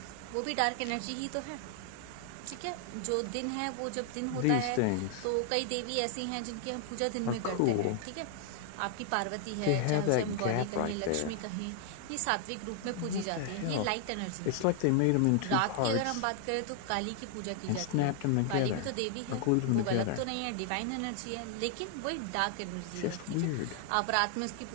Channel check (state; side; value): different; both; correlation 0.00